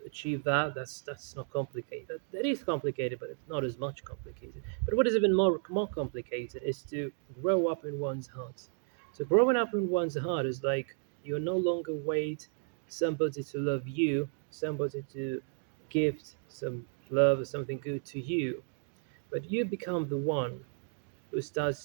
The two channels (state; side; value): silent; left; 55 dB below the other